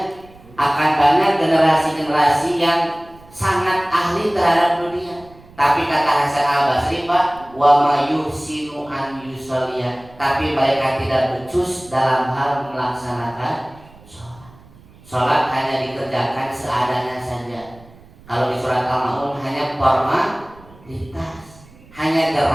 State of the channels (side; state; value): right; noise; rumble, 24 dB below the sound